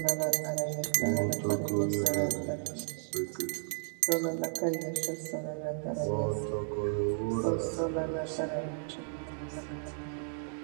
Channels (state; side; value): silent; left; 56 dB below the other